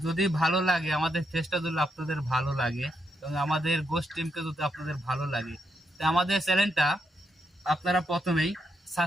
যদি ভালো লাগে, আমাদের চেষ্টা যদি আপনাদের ভালো লাগে এবং আমাদের গোস টিমকে যদি আপনাদের ভালো লাগে, তো আমাদের চ্যানেলটা আপনারা প্রথমেই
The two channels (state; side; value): normal; both; correlation 0.80